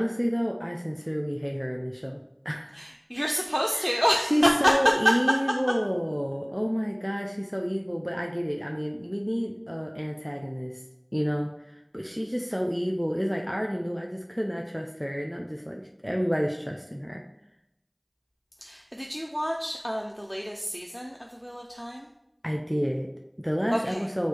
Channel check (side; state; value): both; identical; correlation 1.00